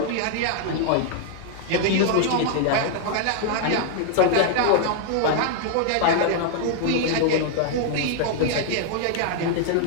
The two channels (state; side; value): different; both; correlation 0.00